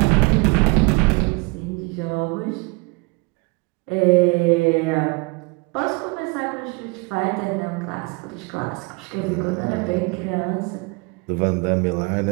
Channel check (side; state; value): left; quieter; 28.9 dB